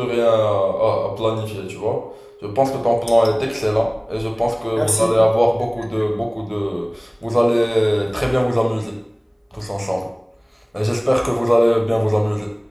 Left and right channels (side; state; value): both; identical; correlation 1.00